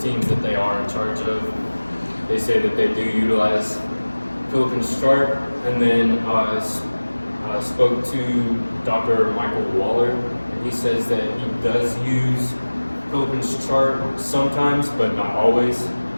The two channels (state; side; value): inverted; both; correlation -1.00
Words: that they are in charge of, they say that they do utilize Prilepin's chart. And then I spoke to Dr. Michael Waller, and he says that he does use Prilepin's chart sometimes, but not always.